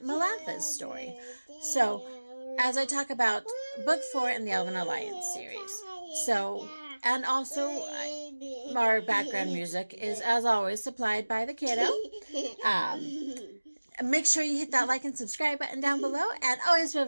story. So, as I talk about Book 4 in the Elven Alliance series. So, and also, our background music is, as always, supplied by the kiddo. Make sure you hit that like and subscribe button down below, and always feel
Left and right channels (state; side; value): inverted; both; correlation -1.00